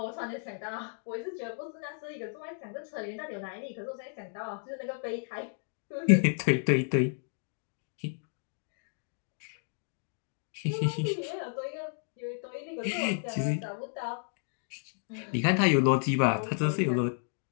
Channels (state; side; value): silent; right; digital silence